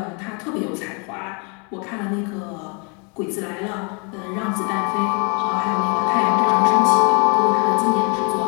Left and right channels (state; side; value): quieter; right; 35.1 dB